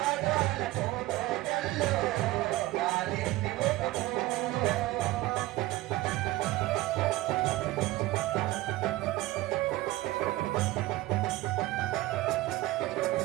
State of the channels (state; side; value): quieter; left; 17.9 dB